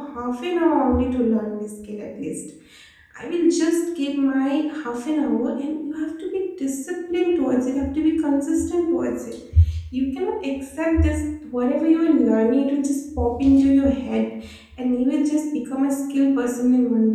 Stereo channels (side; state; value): both; identical; correlation 1.00